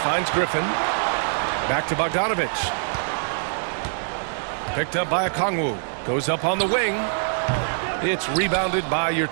Griffin. Back to Bogdanovic. Picked up by Okongwu. Goes up on the wing. It's rebounded by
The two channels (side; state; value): left; silent; digital silence